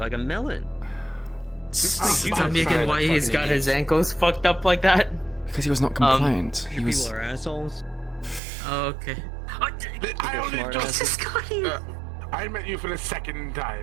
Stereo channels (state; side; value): drops out; left; at 8.4 s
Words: a melon. Tell me again why he's got his ankles fucked up like that? Because he was not compliant. He was. People are assholes. Oh, okay. I only just got you. I met you for the second